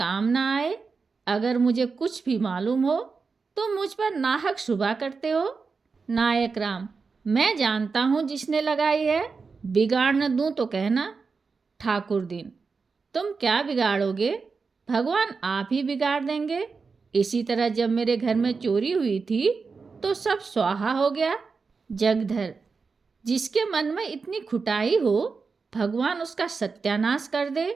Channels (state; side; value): quieter; left; 4.8 dB